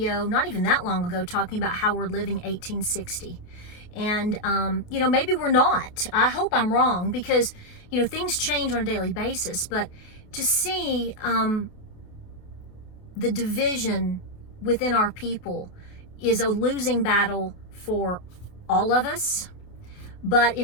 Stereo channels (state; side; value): late; right; 28 ms